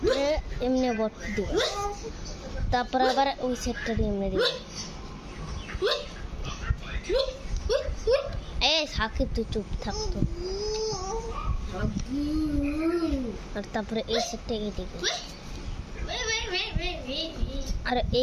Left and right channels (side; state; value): both; identical; correlation 1.00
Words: এমনি বট দিবা তারপরে আবার ওই সেটটা দিয়ে এমনি দিবা সাকিব তুই চুপ থাকতো আর তারপরে এই সেটটা এদিকে আর